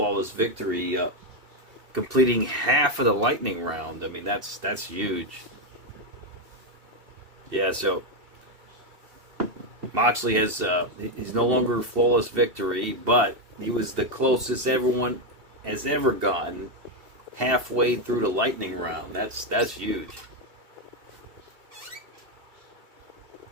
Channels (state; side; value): late; left; 2.7 ms